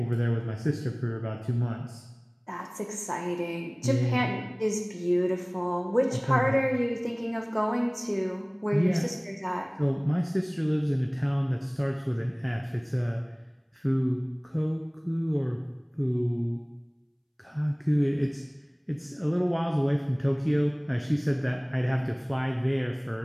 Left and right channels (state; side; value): identical; both; correlation 1.00